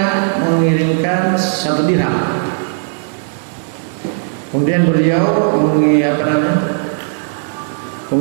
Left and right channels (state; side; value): silent; left; 57 dB below the other